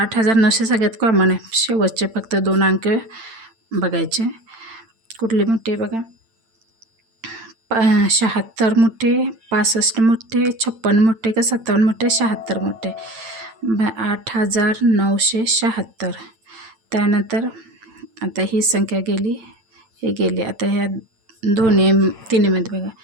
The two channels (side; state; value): left; late; 8.9 ms